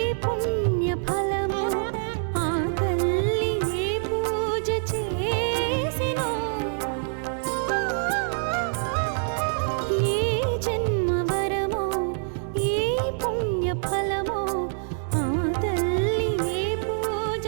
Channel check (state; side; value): silent; left; 61 dB below the other